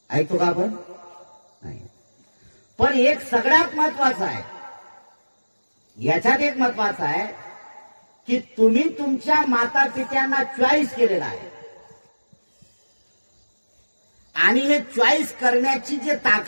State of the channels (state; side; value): inverted; both; correlation -1.00